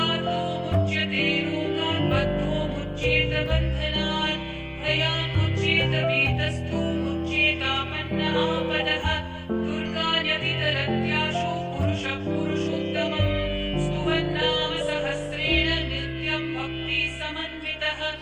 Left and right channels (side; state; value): both; identical; correlation 1.00